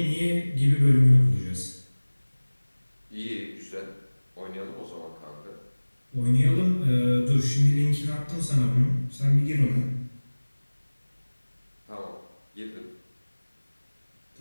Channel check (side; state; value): both; inverted; correlation -1.00